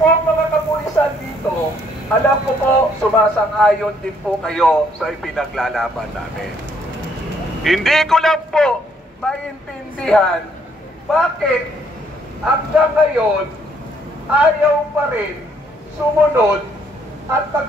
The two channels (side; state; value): both; normal; correlation 0.67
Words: mga kapulisan dito, alam ko po, sumasang-ayon din po kayo sa ipinaglalaban namin. Hindi ko lang po maintindihan bakit hanggang ngayon ayaw pa rin sumunod at